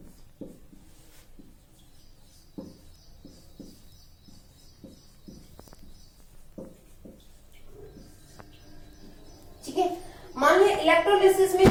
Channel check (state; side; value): identical; both; correlation 1.00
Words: मान लिया इलेक्ट्रोलिसिस में